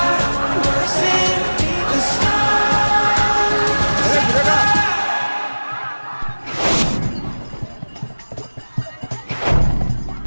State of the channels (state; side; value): inverted; both; correlation -1.00